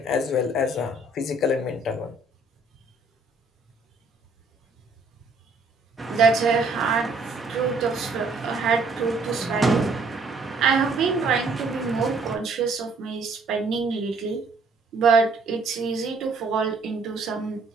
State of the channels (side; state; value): left; quieter; 3.3 dB